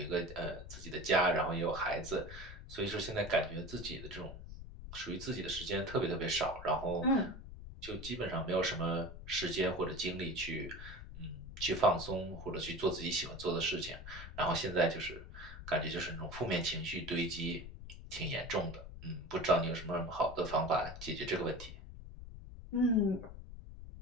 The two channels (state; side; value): noise; left; rumble, 12 dB below the sound